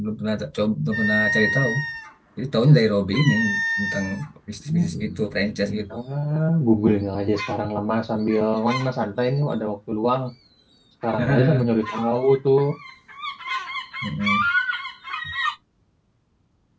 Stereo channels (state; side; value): identical; both; correlation 1.00